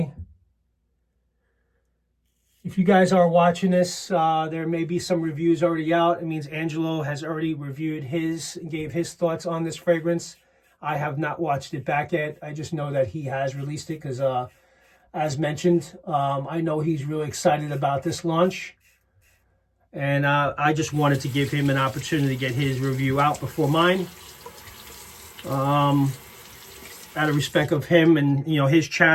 If you guys are watching this, there may be some reviews already out. It means Angelo has already reviewed his and gave his thoughts on this fragrance. I have not watched it back yet. I just know that he has released it because, as mentioned, I know he's really excited about this launch. And I just wanted to give him an opportunity to get his review out before mine. Out of respect of him and, you know, his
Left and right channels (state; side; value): identical; both; correlation 1.00